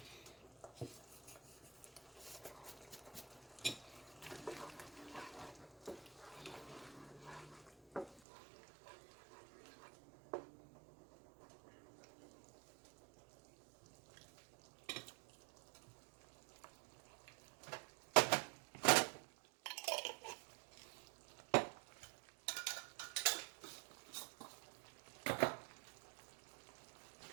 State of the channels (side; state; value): left; drops out; at 8.2 s